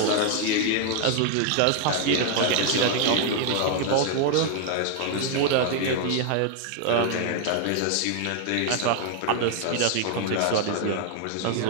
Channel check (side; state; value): both; different; correlation 0.00